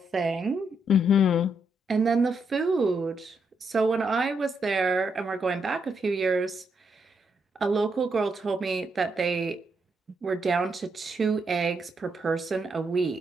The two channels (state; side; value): normal; both; correlation 0.78